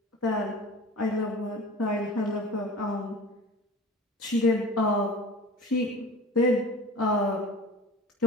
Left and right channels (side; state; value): both; normal; correlation 0.39